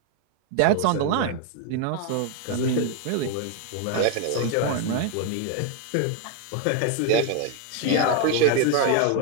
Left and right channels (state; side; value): different; both; correlation 0.01